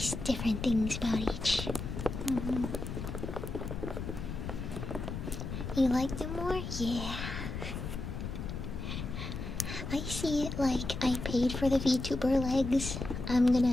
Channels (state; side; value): noise; left; rumble, 6 dB below the sound